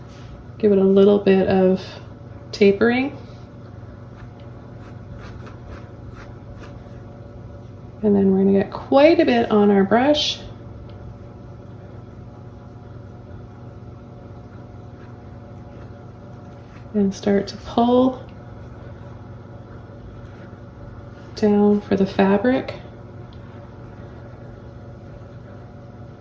Give it a little bit of tapering. And then we're going to get quite a bit on our brush. And start to pull down for the fabric.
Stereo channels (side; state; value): both; identical; correlation 1.00